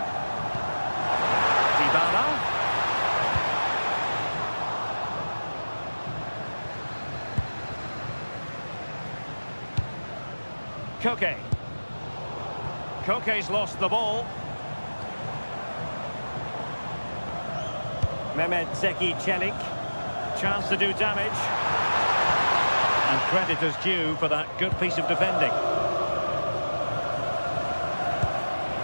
Dybala. Koke. Koke's lost the ball. Mehmet Zeki Çelik. Chance to do damage. And credit is due for that good piece of defending.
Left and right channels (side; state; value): both; inverted; correlation -1.00